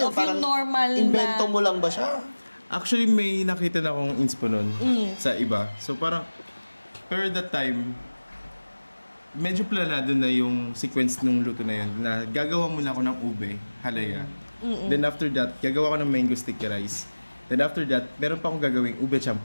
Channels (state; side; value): inverted; both; correlation -1.00